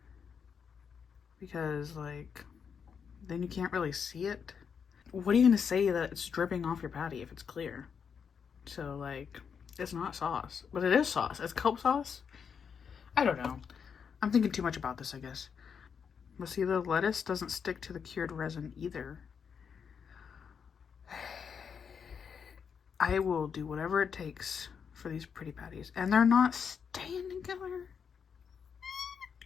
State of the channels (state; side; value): quieter; right; 6.7 dB